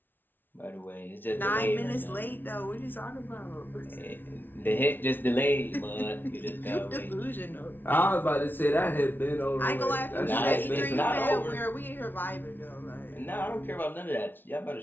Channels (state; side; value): late; right; 0.094 ms